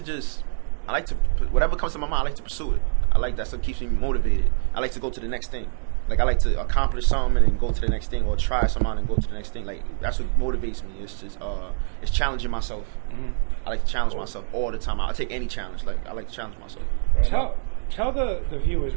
whatever comes to my mind. I like to pursue it. I like that stuff keeps me motivated. I like to go to the next thing. Like I like to accomplish something and then go to the next thing, or try something and go to the next thing. Like that's what motivates me. It's just it's challenging myself. I like to challenge myself all the time. I'll take any challenge. Like I like to challenge myself. Tell the viewers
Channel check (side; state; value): left; silent; digital silence